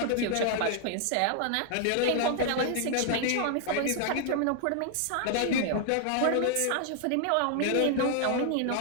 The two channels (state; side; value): different; both; correlation 0.00